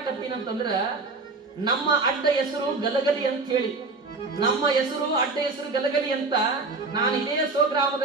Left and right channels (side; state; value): left; quieter; 3.8 dB